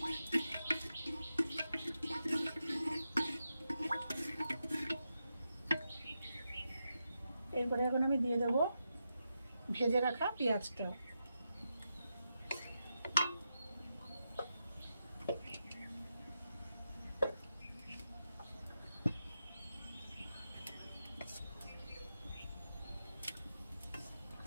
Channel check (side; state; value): both; inverted; correlation -0.87